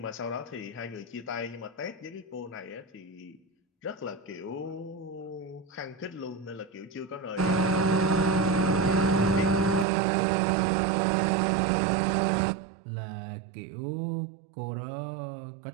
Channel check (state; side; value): drops out; left; at 9.9 s